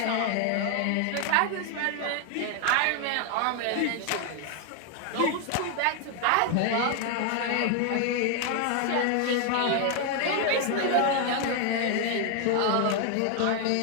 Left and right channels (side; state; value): both; different; correlation 0.01